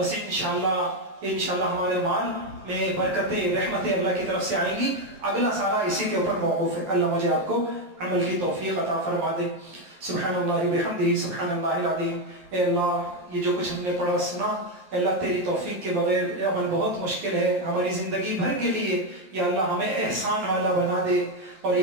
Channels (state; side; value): late; left; 11 ms